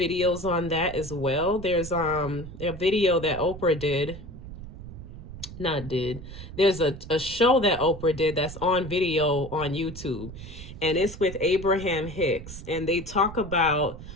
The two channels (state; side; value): noise; right; rumble, 12 dB below the sound